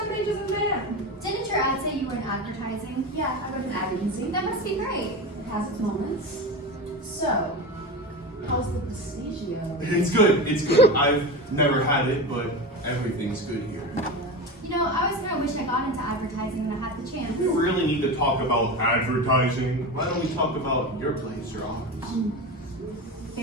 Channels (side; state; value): both; normal; correlation 0.24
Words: ages of man. Didn't your ad say you were in advertising? Yeah, I wrote an ad agency. That must be great. It has its moments. So, how's the Prestigio? It's good. It's good. I've never had it, but everything's good here. You know, I always kind of wish I got into advertising when I had the chance. We really need to talk about advertising. Why don't we talk about your place or ours?